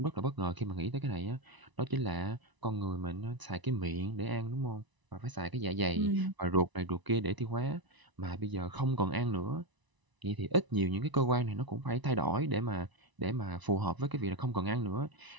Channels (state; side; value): late; left; 1.0 ms